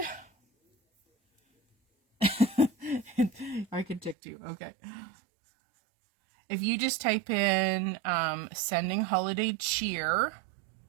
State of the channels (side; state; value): left; drops out; at 4.2 s